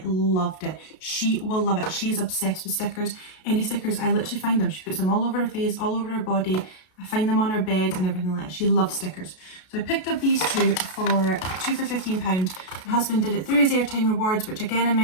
loved it. She will love it. She's obsessed with stickers. Any stickers, I literally find them. She puts them all over her face, all over her body. I find them on her bed and everything like that. She loves stickers. So I picked up these two for 2 for £15. My husband did it through his airtime rewards, which again I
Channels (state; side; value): late; right; 33 ms